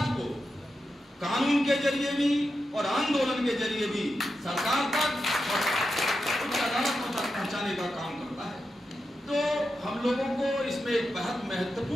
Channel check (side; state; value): both; normal; correlation 0.88